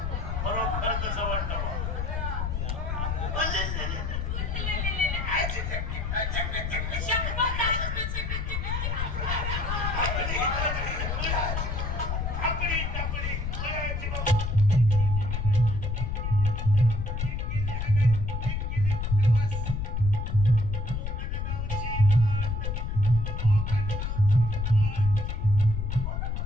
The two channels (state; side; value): noise; left; rumble, 2 dB below the sound